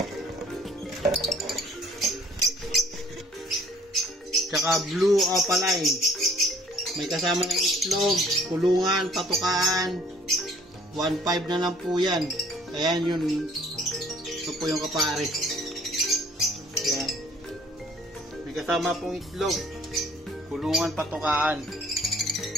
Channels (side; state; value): both; normal; correlation 0.56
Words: Tsaka Blue Opaline. May kasama ng itlog, kulungan, patukaan. 1.5 na lang po yan. Ayan yun. Ito po yung kapares. Ayan. May kasama pong itlog, kulungan, patukaan.